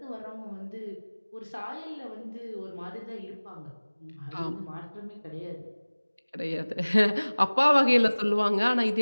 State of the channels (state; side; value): inverted; both; correlation -1.00